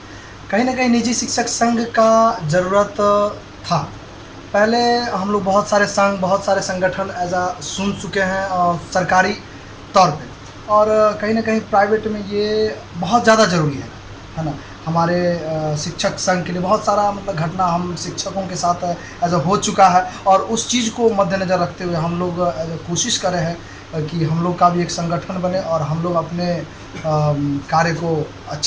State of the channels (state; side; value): identical; both; correlation 1.00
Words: कहीं ना कहीं निजी शिक्षक संघ का ज़रूरत था। पहले हम लोग बहुत सारे संघ, बहुत सारे संगठन सुन चुके हैं और सरकारी तौर पे, और कहीं ना कहीं प्राइवेट में ये बहुत ज़्यादा ज़रूरी है ना। हमारे शिक्षक संघ के लिए बहुत सारा घटना हम शिक्षकों के साथ हो चुका है और उस चीज़ को मद्देनज़र रखते हुए हम लोग कोशिश कर रहे हैं कि हम लोग का भी एक संगठन बने और हम लोग अपने कार्य को